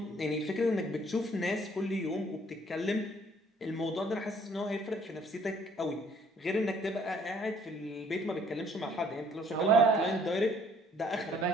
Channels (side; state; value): both; normal; correlation 0.61